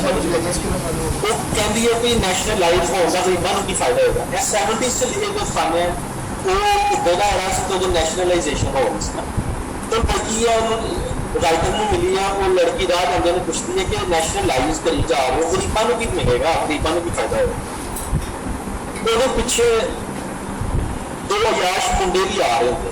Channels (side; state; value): both; identical; correlation 1.00